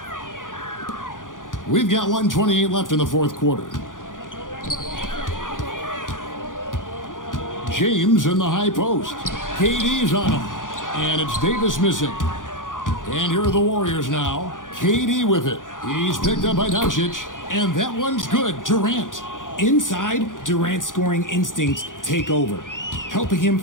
We've got 1:28 left in the fourth quarter. James in the high post. KD's on him. And it's Davis missing. And here are the Warriors now. KD with it. He's picked up by Doncic. And that one's good. Durant. Inside, Durant's scoring instincts take over, helping him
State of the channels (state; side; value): late; right; 0.88 ms